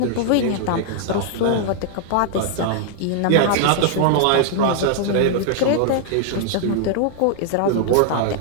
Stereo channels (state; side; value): different; both; correlation 0.00